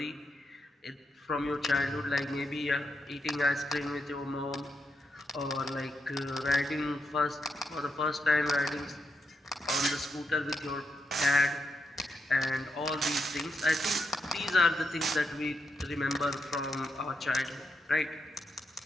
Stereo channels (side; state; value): both; normal; correlation 0.83